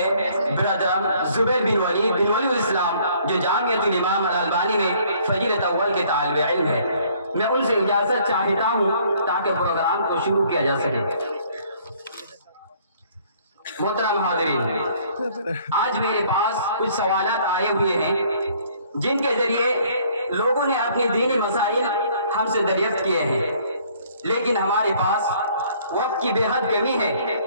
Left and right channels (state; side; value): inverted; both; correlation -0.60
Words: برادر زبیر بن ولی الاسلام، جو جامعۃ الامام الالبانی میں فضیلت اول کے طالب علم ہے۔ میں ان سے اجازت چاہتا ہوں تاکہ پروگرام کو شروع کیا جا سکے۔ محترم حاضرین، آج میرے پاس کچھ سوالات آئے ہوئے ہیں جن کے ذریعے لوگوں نے اپنی دینی مسائل ہم سے دریافت کیے ہیں، لیکن ہمارے پاس وقت کی بے حد کمی ہے،